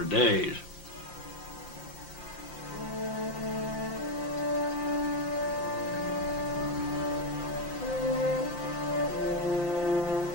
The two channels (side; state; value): right; late; 5.7 ms